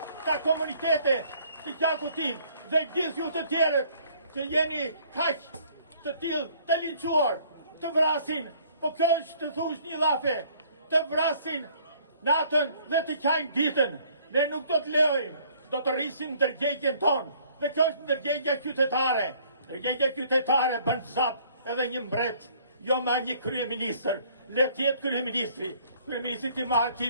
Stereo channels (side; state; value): both; inverted; correlation -0.59